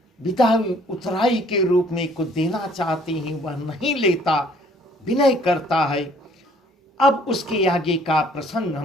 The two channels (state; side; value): normal; both; correlation 0.59